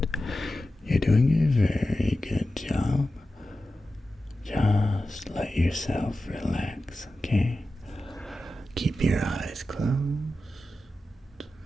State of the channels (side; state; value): both; normal; correlation 0.93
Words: You're doing a very good job. Just let yourself relax, okay? Keep your eyes closed.